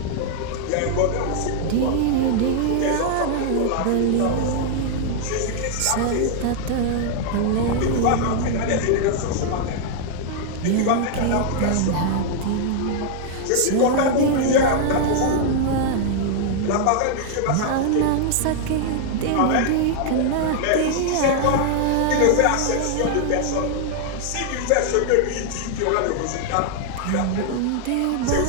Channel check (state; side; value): different; both; correlation 0.00